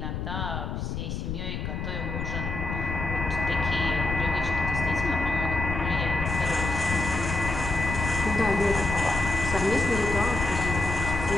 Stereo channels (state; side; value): noise; left; rumble, 4 dB below the sound